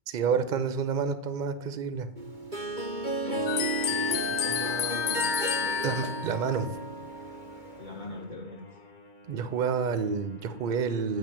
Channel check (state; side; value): late; left; 2.2 ms